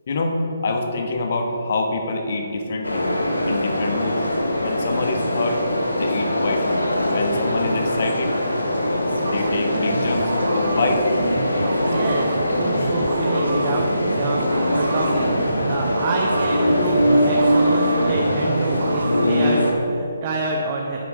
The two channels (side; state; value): both; inverted; correlation -0.80